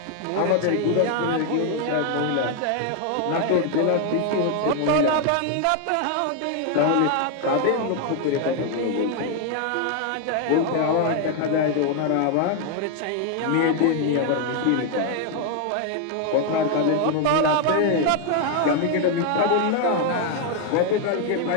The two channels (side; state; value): both; different; correlation 0.01